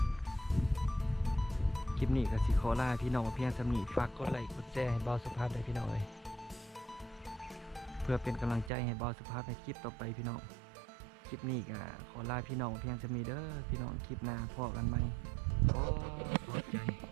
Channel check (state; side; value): drops out; left; at 8.7 s